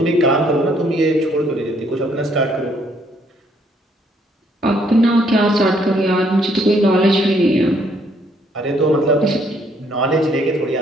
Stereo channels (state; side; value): normal; both; correlation 0.67